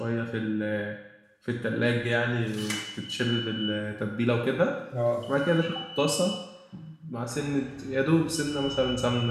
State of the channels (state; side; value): identical; both; correlation 1.00